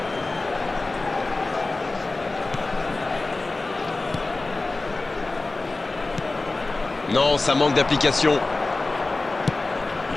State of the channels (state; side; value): quieter; right; 3.3 dB